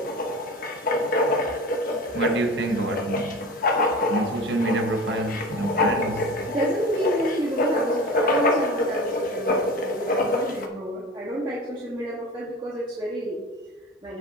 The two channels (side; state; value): both; normal; correlation 0.33